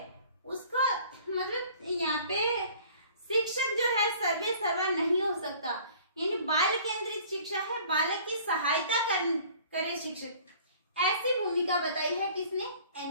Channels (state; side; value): inverted; both; correlation -0.51